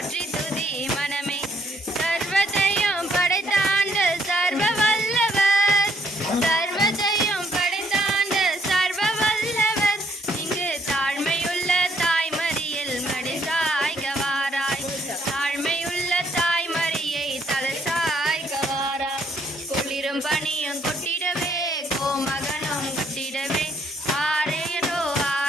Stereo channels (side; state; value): both; normal; correlation 0.68